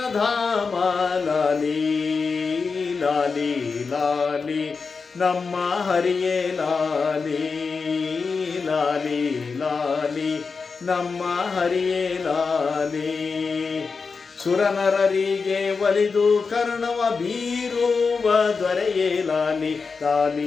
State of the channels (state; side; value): quieter; right; 4.9 dB